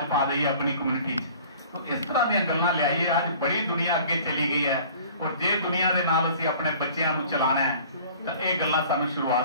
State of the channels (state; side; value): inverted; both; correlation -0.48